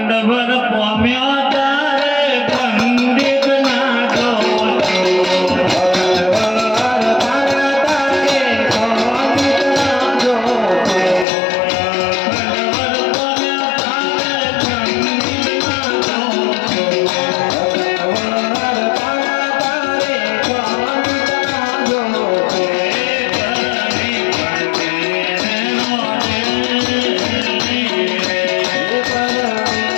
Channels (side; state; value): right; drops out; at 11.2 s